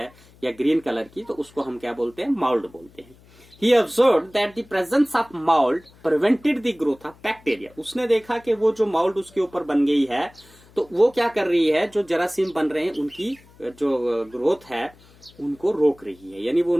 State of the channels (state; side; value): noise; left; hum, 27 dB below the sound